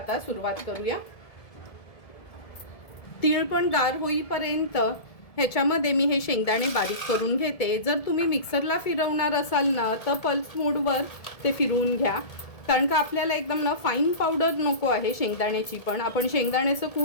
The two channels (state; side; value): late; right; 1.7 ms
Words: सुरुवात करूया। तीळ पण गार होईपर्यंत ह्याच्यामध्ये मी हे शेंगदाणे बारीक करून घेते। जर तुम्ही मिक्सरला फिरवणार असाल ना तर पल्स मोडवर ते फिरवून घ्या, कारण का आपल्याला एकदम ना फाईन पावडर नको आहे शेंगदाण्याची। पण आपण शेंगदाण्याचं